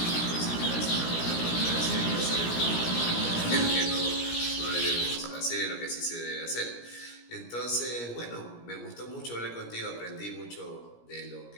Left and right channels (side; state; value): right; late; 17 ms